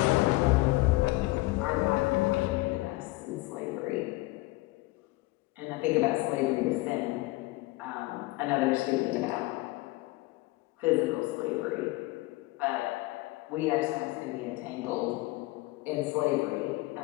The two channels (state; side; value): quieter; right; 20.9 dB